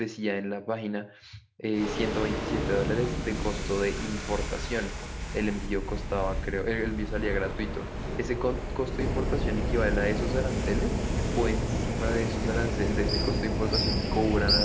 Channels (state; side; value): identical; both; correlation 1.00